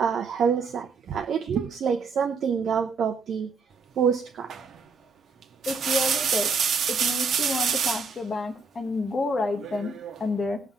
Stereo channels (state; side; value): quieter; left; 4.1 dB